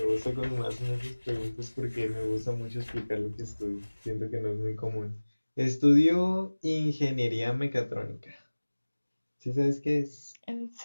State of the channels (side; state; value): both; inverted; correlation -1.00